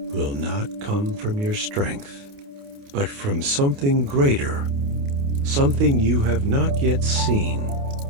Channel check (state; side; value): late; left; 29 ms